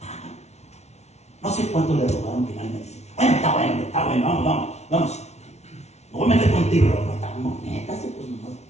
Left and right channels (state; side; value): late; right; 0.32 ms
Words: No sé cuánto le rogaron finalmente. Bueno, está bueno, vamos. No voy a meter contigo, pero estamos netas, pues